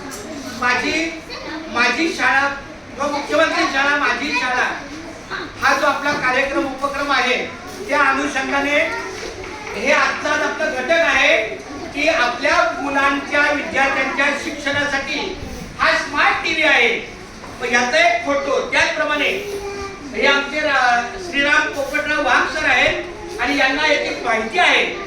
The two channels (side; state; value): both; identical; correlation 1.00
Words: माझी शाळा व मुख्यमंत्री शाळा माझी शाळा हा जो आपला कार्यक्रम उपक्रम आहे, त्या अनुषंगाने हे आजचा आपला घटक आहे की आपल्या मुलांच्या विद्यार्थ्यांच्या शिक्षणासाठी हा स्मार्ट टीव्ही आहे. याचा एक फोटो त्याचप्रमाणे हे आमचे श्रीराम पोपटराव वाघ सर आहेत आणि यांना याची माहिती आहे